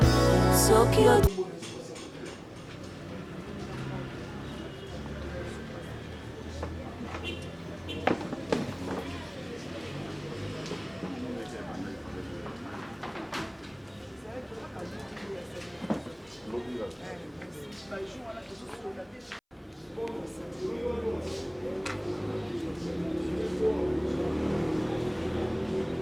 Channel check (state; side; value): identical; both; correlation 1.00